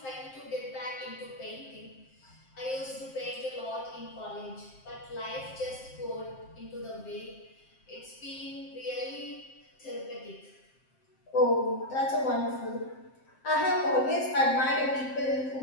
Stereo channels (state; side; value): late; right; 7.6 ms